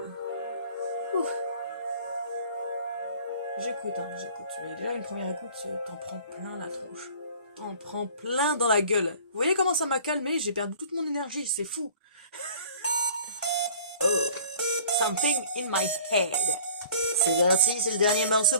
J'écoute. Mais déjà, une première écoute, t'en prends plein la tronche. T'en prends plein dans la gueule. Vous voyez comment ça m'a calmé? J'ai perdu toute mon énergie, c'est fou. Oh, Something in My Head. C'est parti, c'est le dernier morceau,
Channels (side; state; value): both; inverted; correlation -0.48